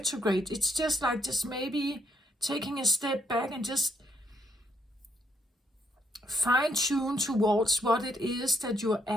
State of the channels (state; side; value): normal; both; correlation 0.73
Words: it's just like just maybe taking a step back and just fine tune towards what it is that you're